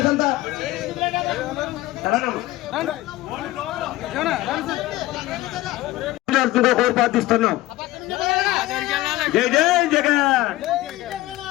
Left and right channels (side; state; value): right; quieter; 17.4 dB